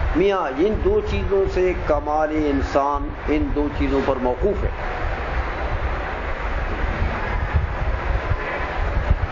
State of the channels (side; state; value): both; identical; correlation 1.00